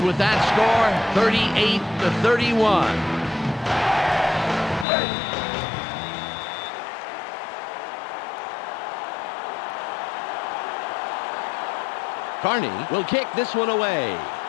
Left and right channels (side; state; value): right; drops out; at 4.9 s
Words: with that score, 38-31. Carney will kick this one away.